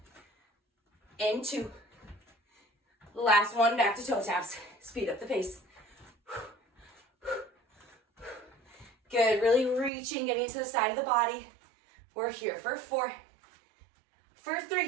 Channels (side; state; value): left; drops out; at 9.9 s